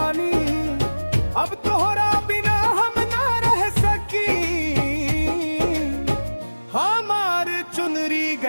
अब तोहरा बिना हम ना रह सकी। हमार चुनरी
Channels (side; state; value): both; inverted; correlation -1.00